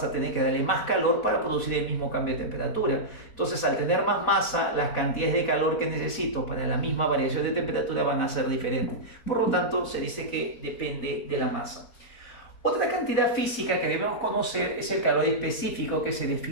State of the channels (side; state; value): right; late; 4.4 ms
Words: a tener que darle más calor para producir el mismo cambio de temperatura. Entonces, al tener más masa, las cantidades de calor que necesito para la misma variación de temperatura van a ser diferentes. Por lo tanto, se dice que depende de la masa. Otra cantidad física que debemos conocer es el calor específico, que se